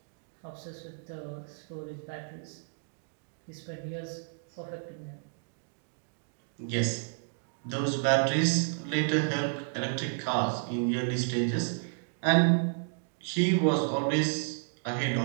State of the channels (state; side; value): silent; left; digital silence